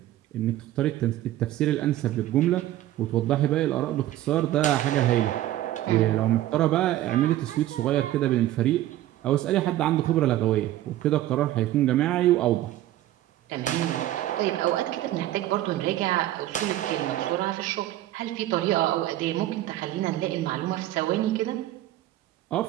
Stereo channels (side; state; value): left; quieter; 14.2 dB